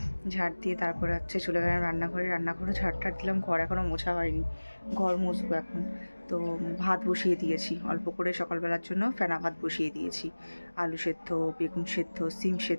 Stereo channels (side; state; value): both; inverted; correlation -1.00